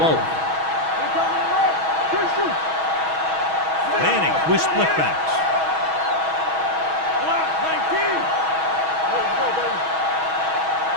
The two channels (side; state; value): left; late; 6.2 ms